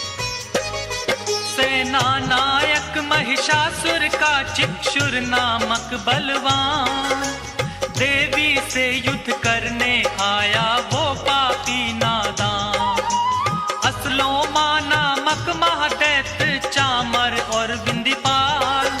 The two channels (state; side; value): identical; both; correlation 1.00